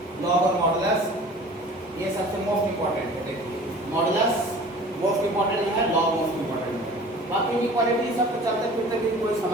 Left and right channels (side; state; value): both; normal; correlation 0.44